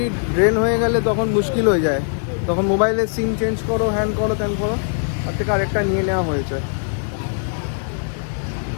ড্রেন হয়ে গেলে তখন মুশকিল হয়ে যায়, তখন মোবাইলের সিম চেঞ্জ করো, হ্যান করো, ত্যান করো, তার থেকে আরেকটা নিয়ে নেওয়া হয়েছে।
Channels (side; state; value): right; silent; digital silence